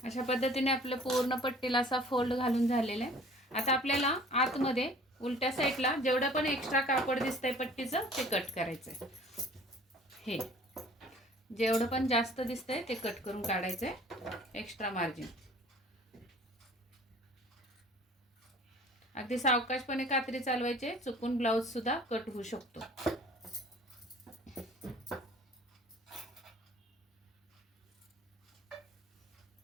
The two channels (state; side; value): normal; both; correlation 0.50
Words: अशा पद्धतीने आपलं पूर्ण पट्टीला असा फोल्ड घालून झालेला आहे. आता आपल्याला आतमध्ये उलट्या साईडला जेवढं पण एक्स्ट्रा कापड दिसतंय पट्टीचं ते कट करायचंय. हे जेवढं पण जास्त दिसतंय ते कट करून काढायचंय एक्स्ट्रा मार्जिन. अगदी सावकाशपणे कात्री चालवायचे, चुकून ब्लाऊज सुद्धा कट होऊ शकतो.